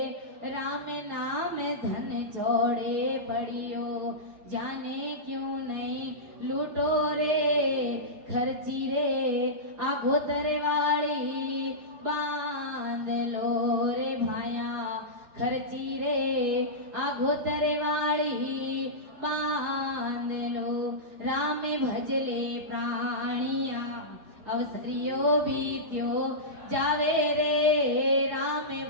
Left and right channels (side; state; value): left; late; 4.8 ms